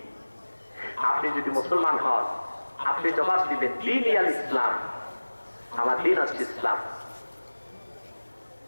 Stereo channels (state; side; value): inverted; both; correlation -1.00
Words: আপনি যদি মুসলমান হন, আপনি জবাব দিবেন দীন আল ইসলাম, আমার দিন হচ্ছে ইসলাম।